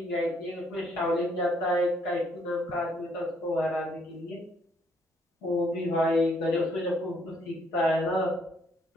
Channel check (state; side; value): normal; both; correlation 0.68